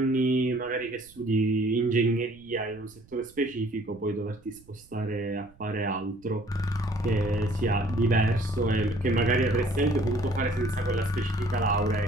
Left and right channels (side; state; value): right; noise; rumble, 27 dB below the sound